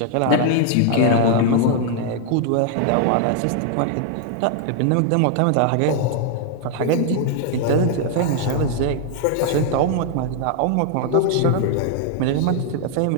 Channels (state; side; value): different; both; correlation 0.00